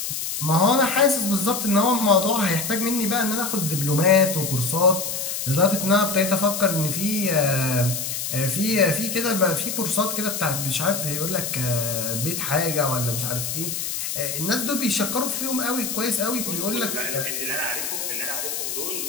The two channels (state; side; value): noise; left; hiss, 3 dB below the sound